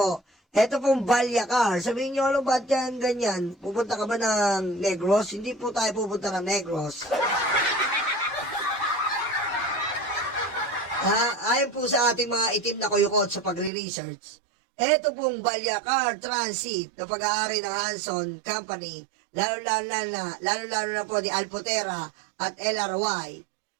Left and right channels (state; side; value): drops out; left; at 13.7 s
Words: Ito pong Balyacar. Sabihin nyo, ano ba't yan ganyan? Pupunta ka ba ng Negros? Hindi po tayo pupunta ng Negros. Ayon po sa ating mga itim na kuyukot sa pagre-research, ito pong Balyacar Transit na pag-aari ng Hanson Company, lalo-lalo na po ni Alpotera at LRY.